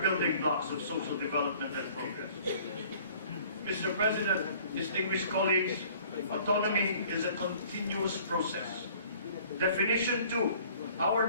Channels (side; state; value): both; inverted; correlation -0.53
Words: building blocks of social development and progress. Mr. President, distinguished colleagues, autonomy is a continuous process. Definition 2.